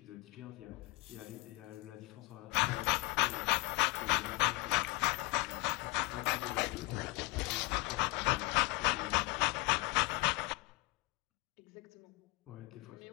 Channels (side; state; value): right; quieter; 23.5 dB